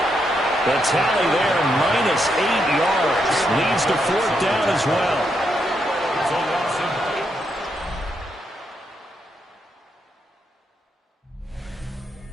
The tally there, -8 yards. Leads to 4th down as well.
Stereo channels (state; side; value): normal; both; correlation 0.80